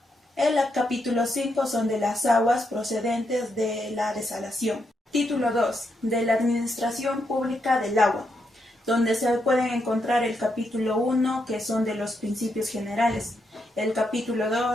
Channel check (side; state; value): both; normal; correlation 0.81